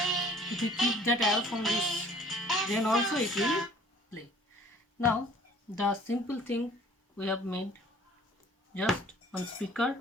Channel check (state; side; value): normal; both; correlation 0.53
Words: If we keep that away from this, then also it will play. Now the simple thing we have made, just one speaker